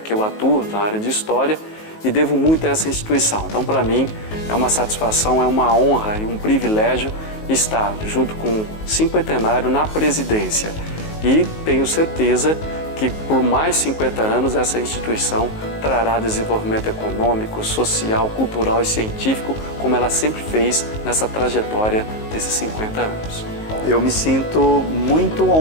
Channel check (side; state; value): right; late; 19 ms